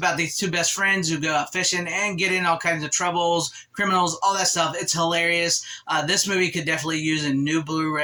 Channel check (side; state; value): both; identical; correlation 1.00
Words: these two best friends who go out fishing and get in all kinds of troubles, criminals, all that stuff. It's hilarious. This movie could definitely use a new